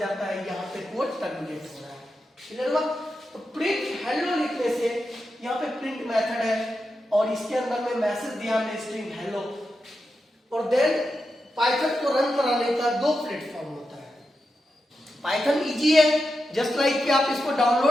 है यहाँ पे कोड टर्मिनेट हो रहा है। क्लियर हुआ? तो प्रिंट हेलो लिखने से यहाँ पे प्रिंट मेथड है और इसके अंदर में मैसेज दिया हमने स्ट्रिंग हेलो। और देन पाइथन को रन कराने का दो प्लेटफॉर्म होता है। पाइथन इजी है, जस्ट लाइक कि आप इसको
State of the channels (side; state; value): both; normal; correlation 0.88